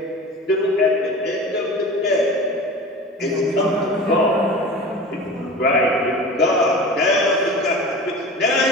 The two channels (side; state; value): both; normal; correlation 0.35